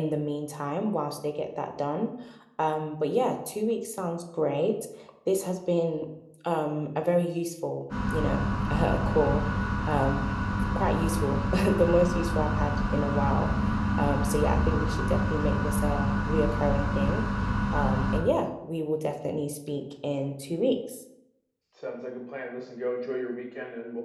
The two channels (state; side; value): identical; both; correlation 1.00